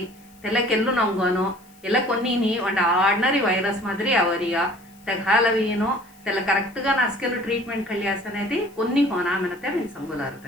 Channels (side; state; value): left; noise; hiss, 28 dB below the sound